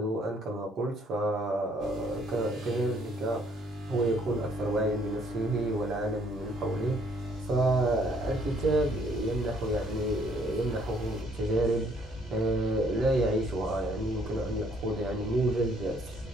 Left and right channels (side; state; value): both; normal; correlation 0.65